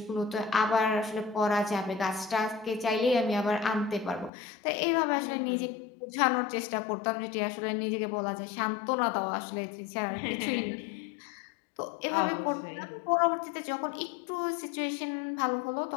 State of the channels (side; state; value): right; drops out; at 4.3 s